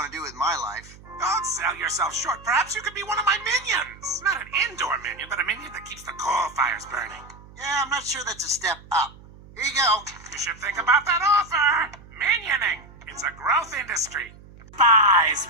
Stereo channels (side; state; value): right; noise; hum, 21 dB below the sound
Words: to do with my life. Don't sell yourself short. Perhaps you could be one of my minions. Not an indoor minion, but a minion that keeps the coal fires burning. Yeah, I'm not sure that's a step up. Here you go. You should think about that offer. Minioning. It's a growth industry. Buys